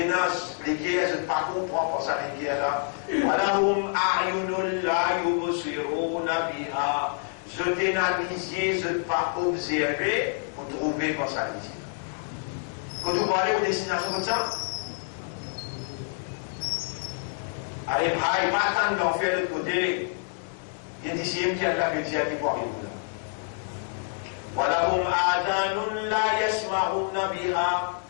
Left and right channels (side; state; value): right; silent; 60 dB below the other